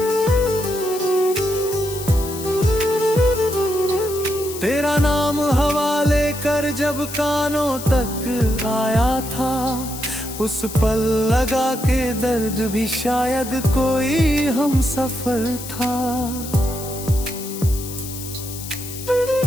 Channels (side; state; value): left; noise; hiss, 11 dB below the sound